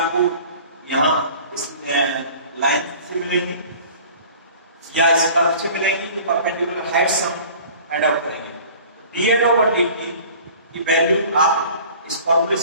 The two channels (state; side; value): inverted; both; correlation -0.46